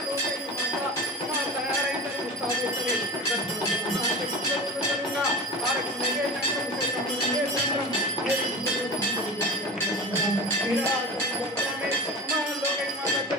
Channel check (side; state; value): both; normal; correlation 0.33